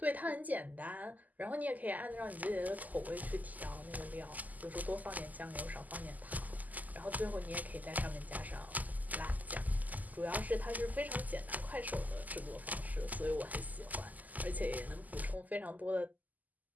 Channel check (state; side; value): late; left; 0.080 ms